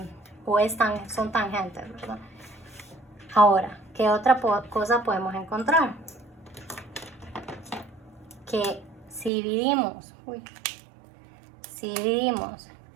o son tangentes, ¿verdad? Ahora, ¿qué otra cosa podemos encontrar? Que si dividimos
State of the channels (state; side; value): drops out; left; at 9.3 s